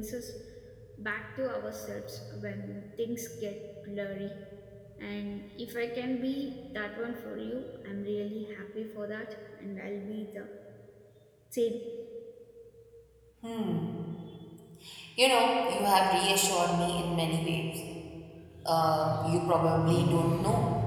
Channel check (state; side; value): identical; both; correlation 1.00